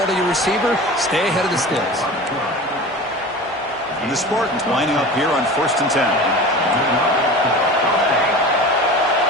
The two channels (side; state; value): both; normal; correlation 0.35